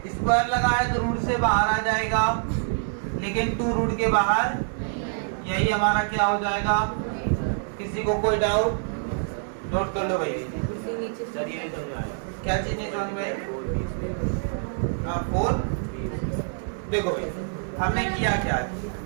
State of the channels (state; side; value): silent; left; digital silence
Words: स्क्वायर लगा है तो रूट से बाहर आ जाएगा, लेकिन 2 रूट के बाहर, यही हमारा क्या हो जाएगा। किसी को कोई डाउट नोट कर लो भाई। क्या चीज नहीं समझ में, 4 देखो भाई हमने किया क्या,